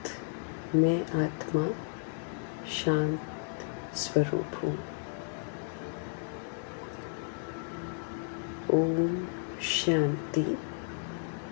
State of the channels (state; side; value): silent; right; 56 dB below the other